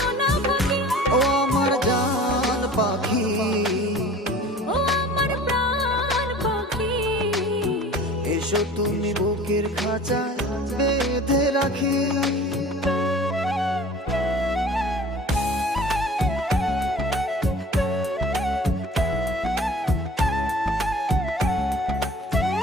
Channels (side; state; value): both; normal; correlation 0.44